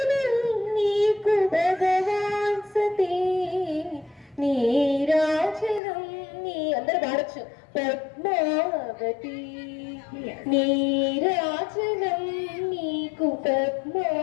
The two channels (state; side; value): drops out; right; at 5.8 s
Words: నీకు భగవాన్ సతీ నీరాజనం నీ అందరూ పాడచ్చు పద్మావతి నీరాజనం నీకు